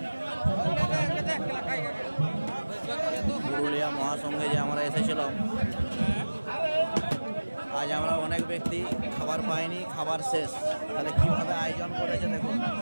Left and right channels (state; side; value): inverted; both; correlation -1.00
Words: পুরুলিয়া মহাসংঘে যে আমরা এসেছিলাম, আজ আমরা অনেক ব্যক্তি খাবার পাইনি, খাবার শেষ। তাহলে কিভাবে আয়োজন করেছে দেখুন।